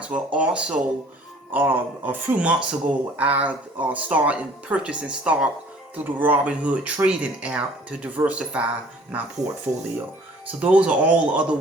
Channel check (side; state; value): both; normal; correlation 0.53